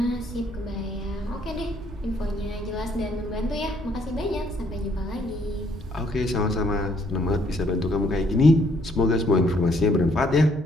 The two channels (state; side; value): normal; both; correlation 0.67